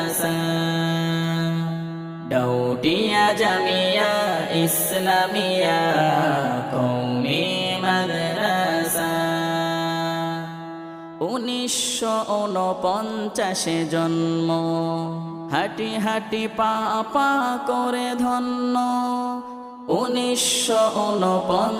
ডাউটিয়া জামিয়া ইসলামিয়া কওমি মাদ্রাসা। 1949 জন্ম, হাঁটি হাঁটি পা পা করে ধন্য।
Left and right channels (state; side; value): identical; both; correlation 1.00